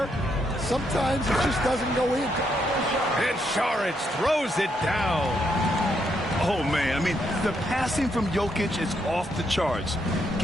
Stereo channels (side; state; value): both; normal; correlation 0.77